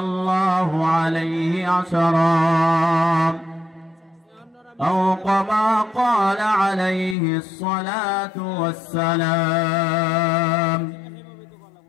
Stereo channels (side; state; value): right; drops out; at 7.2 s